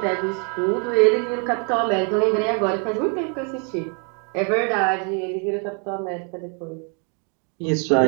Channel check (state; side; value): quieter; left; 38.2 dB